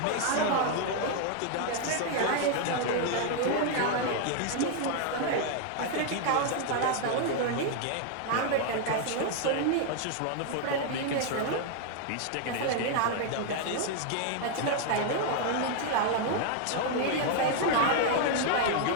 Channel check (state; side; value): different; both; correlation 0.00